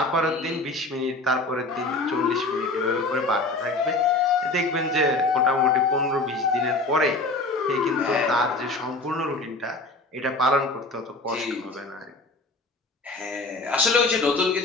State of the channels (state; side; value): quieter; right; 3.0 dB